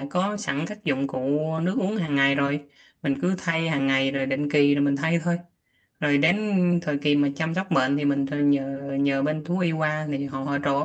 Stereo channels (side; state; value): both; identical; correlation 1.00